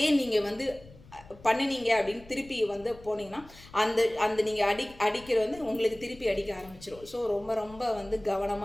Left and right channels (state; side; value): noise; left; rumble, 21 dB below the sound